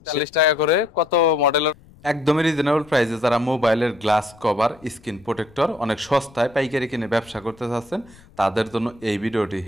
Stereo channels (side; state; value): left; noise; rumble, 26 dB below the sound